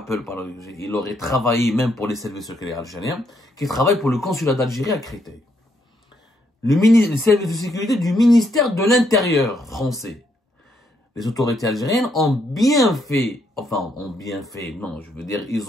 il aurait travaillé même pour les services secrets algériens, qui travaillent pour le consulat d'Algérie à Créteil. Les services de sécurité du ministère de l'Intérieur français. Les autorités algériennes ont bien fait, ils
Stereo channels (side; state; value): both; normal; correlation 0.75